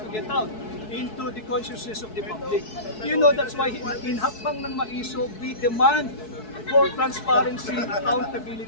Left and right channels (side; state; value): right; late; 4.6 ms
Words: to get out into the consciousness of the public. You know, that's why in Hakbang ng Maiso, we demand for transparency,